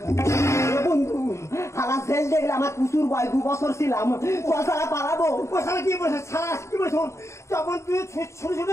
বন্ধু, শালা জেল দেখলে আমার কুসুর বয় 2 বছর ছিলাম, শালা পালাবো। ও শালা কি বলছে, শালা কি বলছে, চপল তুই ছোট ছোট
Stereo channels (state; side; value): late; right; 0.14 ms